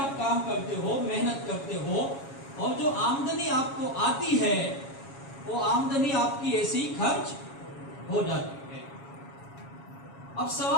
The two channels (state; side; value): late; right; 7.3 ms